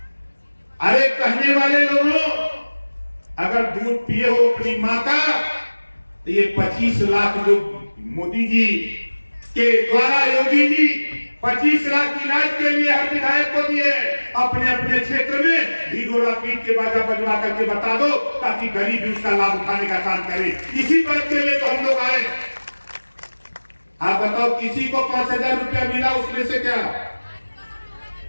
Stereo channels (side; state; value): both; inverted; correlation -1.00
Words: अरे कहने वाले लोगों, अगर दूध पिए हो अपनी माँ का, तो ये 25 लाख जो मोदी जी के द्वारा योगी जी 25 लाख इलाज के लिए हर विधायक को दिए, अपने अपने क्षेत्र में ढिढोरा पीट के बाजा बजवा करके बता दो, ताकि गरीब भी उसका लाभ उठाने का काम करे। इसी बात के लिए तो हम लोग आए। आप बताओ, किसी को 5,000 रुपया मिला उसमें से? क्या